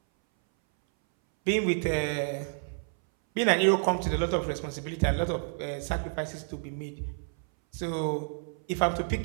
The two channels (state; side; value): silent; left; 58 dB below the other